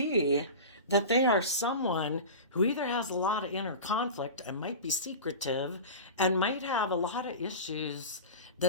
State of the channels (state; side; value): inverted; both; correlation -0.31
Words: that they are someone who either has a lot of inner conflict and might be secretive and might have a lot of issues